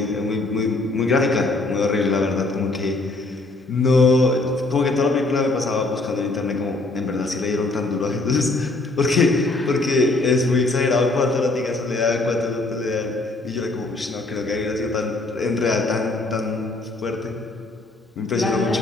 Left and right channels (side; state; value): right; quieter; 3.1 dB